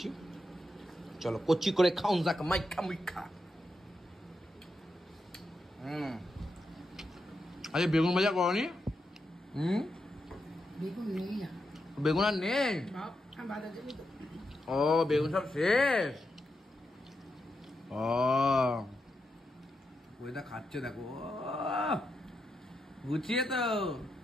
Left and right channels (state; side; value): normal; both; correlation 0.85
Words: চলো কচি করে খাউন যাক, মাইখা মুইখা। আরে বেগুন ভাজা করনি? বেগুন নেই না, বেগুন আর নেই? বাজার যাবি তো। ও বেগুন সব শেষ। ও ওইটা খাচ্ছে দেখো, গুছিয়ে তো।